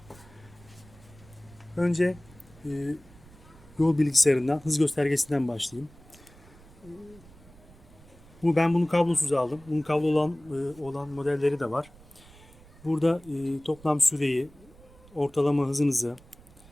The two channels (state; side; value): noise; right; rumble, 24 dB below the sound